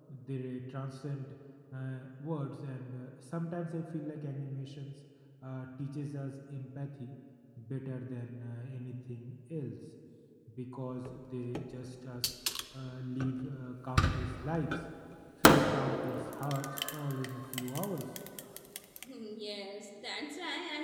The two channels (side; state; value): both; identical; correlation 1.00